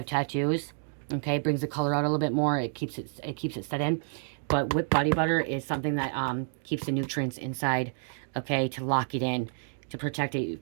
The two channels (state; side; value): silent; left; 58 dB below the other